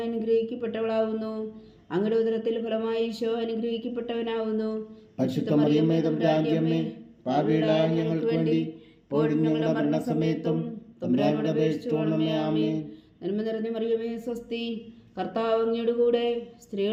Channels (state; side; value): identical; both; correlation 1.00